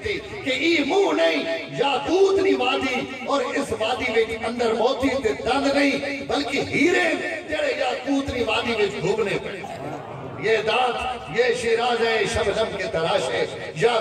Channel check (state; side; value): identical; both; correlation 1.00